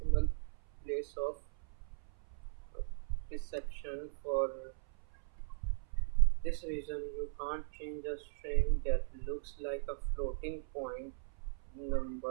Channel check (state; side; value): silent; left; 52 dB below the other